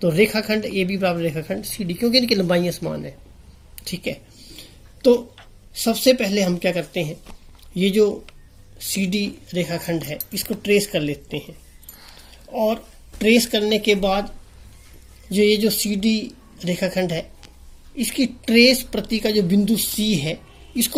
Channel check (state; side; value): identical; both; correlation 1.00